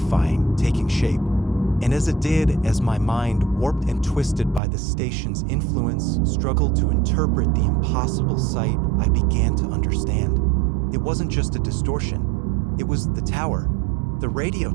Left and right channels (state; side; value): drops out; left; at 4.6 s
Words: taking shape. And as it did, as my mind, warped and twisted by the station's influence, struggled to interpret the impossible sight, I began to understand. It wasn't just a distortion. It was the tower, the radio